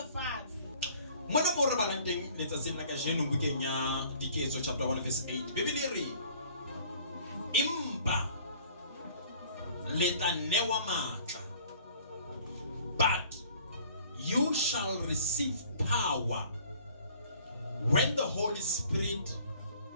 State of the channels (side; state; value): both; inverted; correlation -0.53